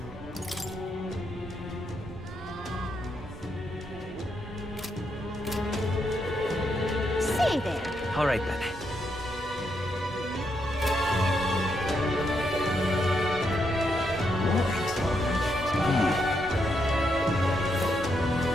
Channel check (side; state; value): right; noise; hum, 19 dB below the sound